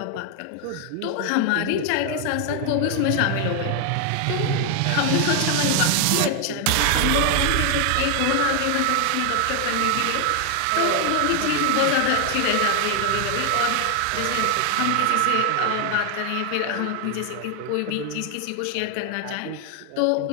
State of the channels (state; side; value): different; both; correlation 0.00